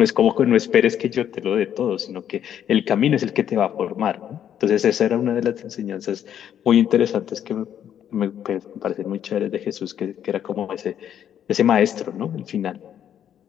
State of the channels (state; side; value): quieter; right; 9.7 dB